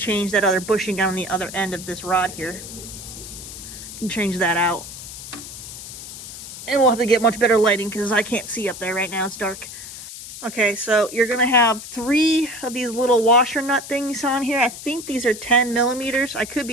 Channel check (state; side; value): noise; left; hiss, 12 dB below the sound